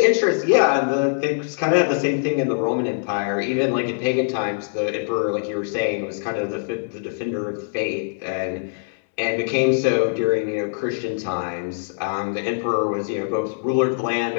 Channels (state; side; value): silent; right; digital silence